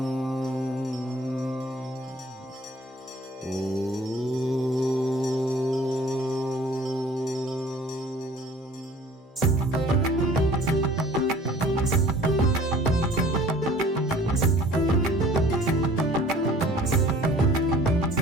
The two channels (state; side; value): normal; both; correlation 0.51